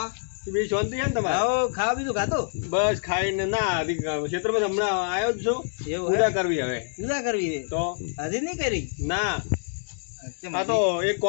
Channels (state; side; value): silent; right; 61 dB below the other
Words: છે બીજી શાંતિ છે ને તમારે આવો ખાવા બીજું ખાતું બસ ખાઈને ના હજી ખેતરમાં હમણાં આવ્યો જ છું એવું પૂજા હે કરવી હવે પૂજા કરવી છે તો હજી નહીં કરી ના કેમ આ તો એક